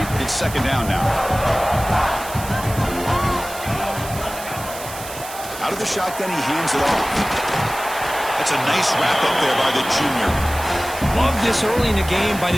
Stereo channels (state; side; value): noise; right; hiss, 12 dB below the sound